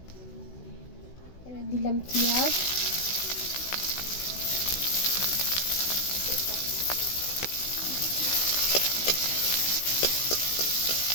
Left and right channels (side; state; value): right; late; 16 ms